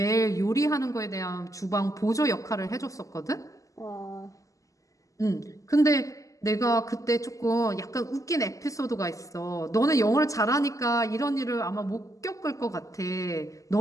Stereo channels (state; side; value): late; right; 0.16 ms